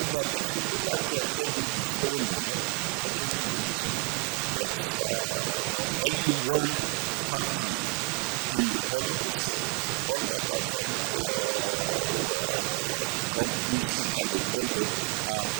that, if you look at Kebbi before 2015, there was only one factory in the whole of the state. All other companies, if I may call them, are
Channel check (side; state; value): left; quieter; 30.6 dB